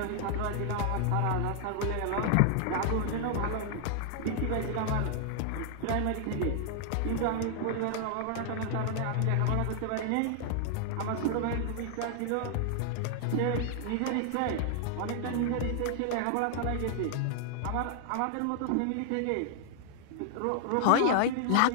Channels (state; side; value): different; both; correlation 0.00